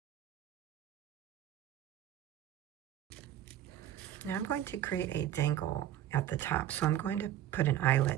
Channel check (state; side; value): quieter; left; 11.7 dB